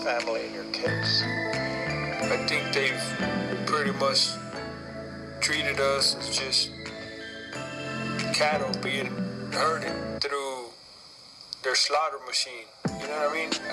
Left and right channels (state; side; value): identical; both; correlation 1.00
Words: and your case? I think they've pretty much treated us as just cattle being herded through their slaughter machine. You know what I mean?